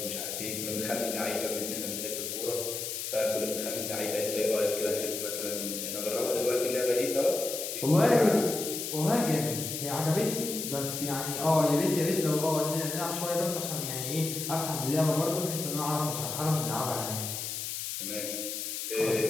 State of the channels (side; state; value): left; noise; hiss, 4 dB below the sound